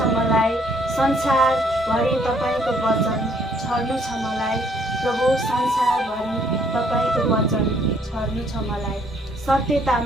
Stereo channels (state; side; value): normal; both; correlation 0.65